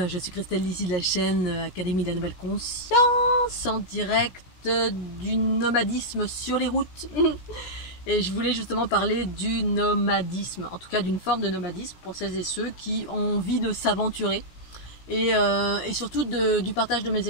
je suis Christelle ici de la chaîne Académie de la Nouvelle Conscience, en direct du nomadisme sur les routes. Et je voulais justement parler du nomadisme, en tout cas d'une forme de nomadisme pour celles et ceux qui ont envie de s'aventurer. Et surtout du partage de mes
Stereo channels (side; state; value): right; late; 17 ms